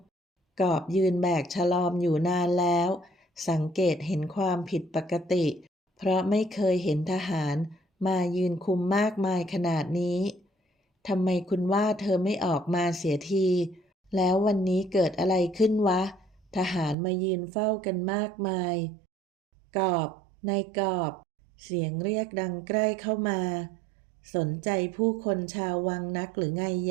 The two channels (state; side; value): drops out; left; at 16.9 s